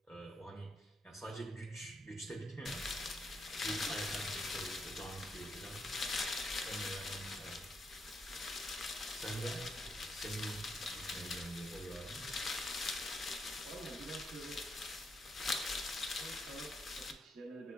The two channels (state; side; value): normal; both; correlation 0.79